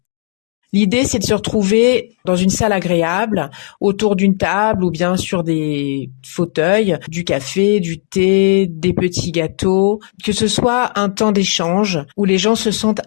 L'idée, c'est de se retrouver dans une salle agréable, autour d'une table ou bien sur des fauteuils, du café, du thé, des petits gâteaux, que ce soit un temps d'échange où les gens se sentent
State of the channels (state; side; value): silent; right; digital silence